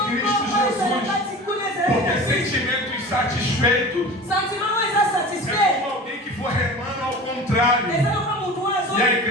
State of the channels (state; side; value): normal; both; correlation 0.36